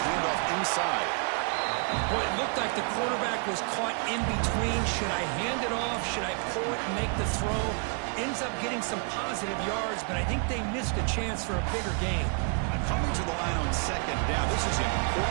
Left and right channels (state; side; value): quieter; left; 39.0 dB